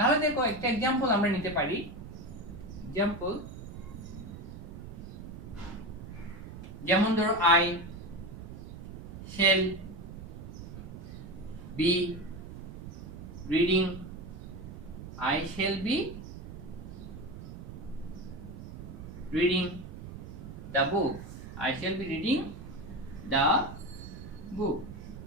দেখো একটা एग्जांपल আমরা নিতে পারি। एग्जांपल যেমন ধরো, I shall be reading, I shall be reading the book, I shall be reading the বুক।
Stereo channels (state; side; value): noise; right; rumble, 11 dB below the sound